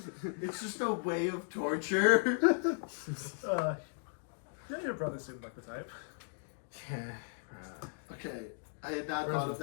it's just a way of torture. Yeah, your brother seemed like the type. Yeah. Okay, I had not Where's thought the of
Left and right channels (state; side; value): silent; right; digital silence